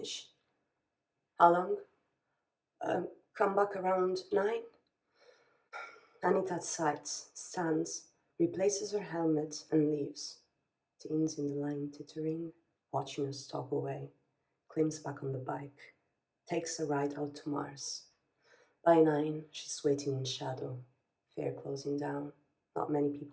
How long? Come back around 9? Anita sighs, stands, replaces her helmet, and leaves. Teens in the line tittering, watching her stalk away. Climbs back on the bike, takes a ride out to Mars. By 9, she's waiting in shadow. Fair closing down. Not many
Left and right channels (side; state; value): both; identical; correlation 1.00